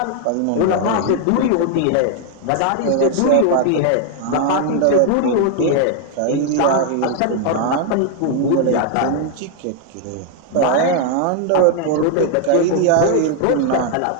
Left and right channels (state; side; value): different; both; correlation 0.00